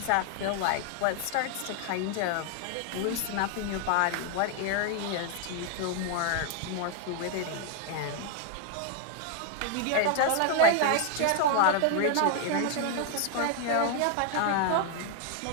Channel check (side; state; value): both; different; correlation 0.00